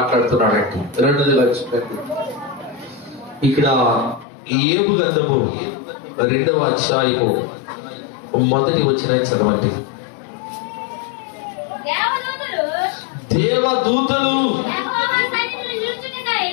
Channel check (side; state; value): right; drops out; at 4.2 s